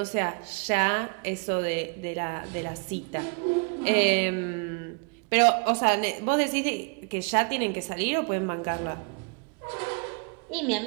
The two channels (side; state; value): left; quieter; 33.8 dB